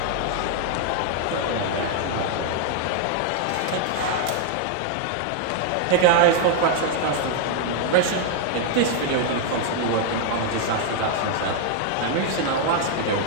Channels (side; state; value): both; different; correlation 0.00